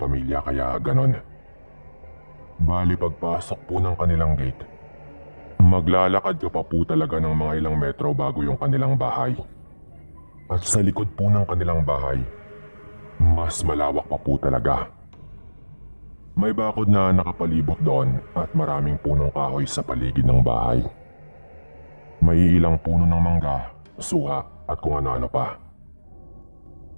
kaya ganon. Bali pagpasok po ng kanilang gate, maglalakad ka pa po talaga ng mga ilang metro bago yung kanilang bahay. At sa likod po ng kanilang bahay, mas malawak pa po talaga. May bakod na nakapalibot doon at maraming punong kahoy sa paligid ng bahay. May ilang puno ng mangga, suha at kung ano-ano pa.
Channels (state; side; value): inverted; both; correlation -1.00